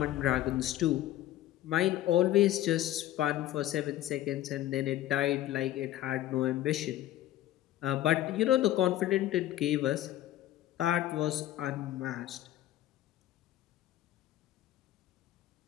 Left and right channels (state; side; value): quieter; right; 13.8 dB